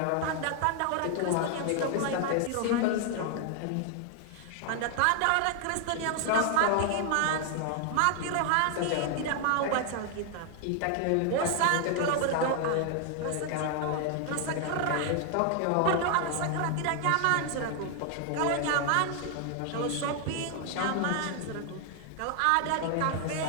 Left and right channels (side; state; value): both; different; correlation 0.00